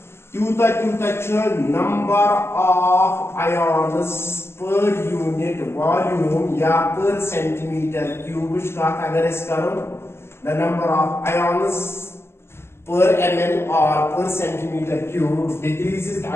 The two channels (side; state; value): right; late; 0.12 ms